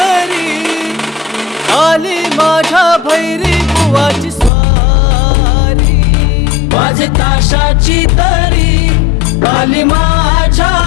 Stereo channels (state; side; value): drops out; right; at 4.5 s